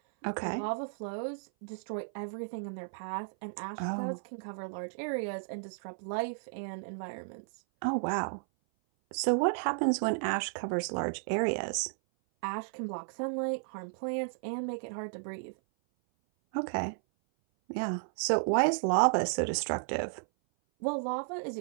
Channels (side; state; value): left; silent; 55 dB below the other